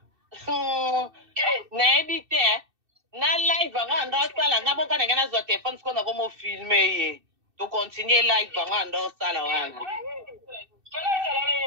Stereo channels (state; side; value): late; left; 2.6 ms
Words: Na ebite na live anga ndo sala ngabo kana ngana zo telephone siko na komo filmer ye. To continue live anga ndo sala wana.